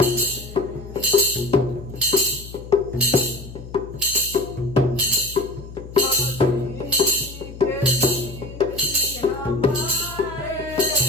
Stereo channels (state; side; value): noise; left; hum, 14 dB below the sound